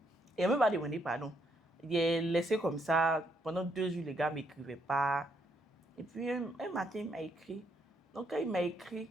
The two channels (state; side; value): normal; both; correlation 0.74